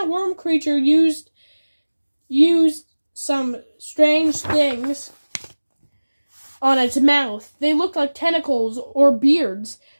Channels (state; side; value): inverted; both; correlation -1.00